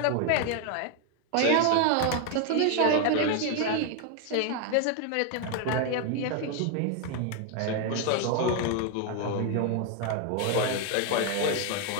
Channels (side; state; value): both; different; correlation 0.01